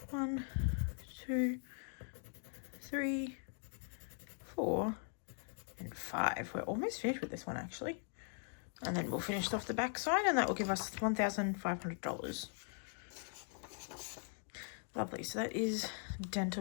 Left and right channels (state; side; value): silent; right; 51 dB below the other